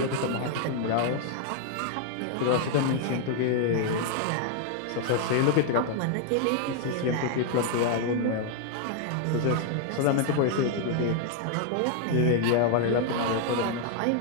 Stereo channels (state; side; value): different; both; correlation 0.00